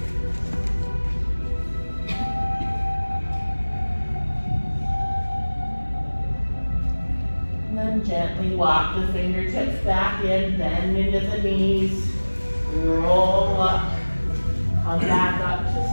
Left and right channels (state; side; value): inverted; both; correlation -1.00